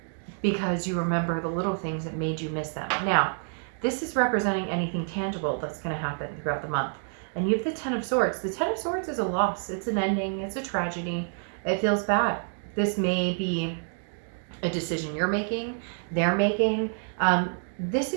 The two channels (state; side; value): silent; left; 56 dB below the other